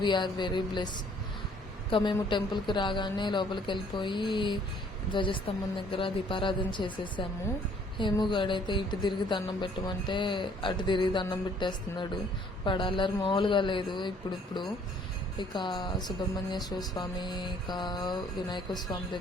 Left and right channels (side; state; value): both; normal; correlation 0.60